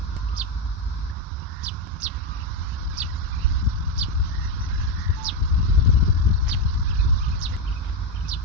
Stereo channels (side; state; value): both; normal; correlation 0.07